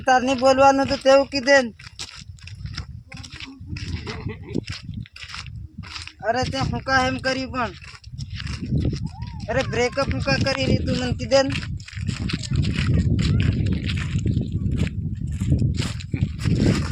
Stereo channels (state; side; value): identical; both; correlation 1.00